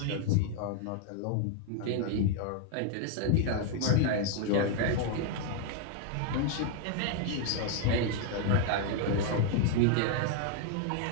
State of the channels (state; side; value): different; both; correlation 0.00